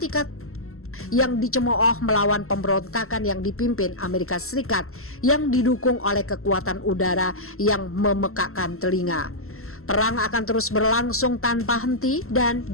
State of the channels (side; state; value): right; late; 0.63 ms